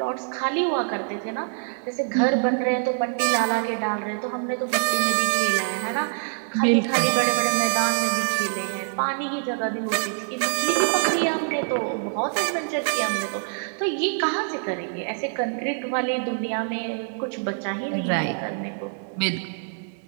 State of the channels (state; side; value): silent; left; digital silence